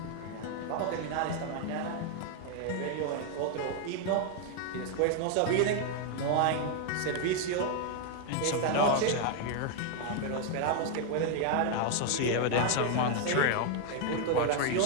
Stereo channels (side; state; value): both; different; correlation 0.00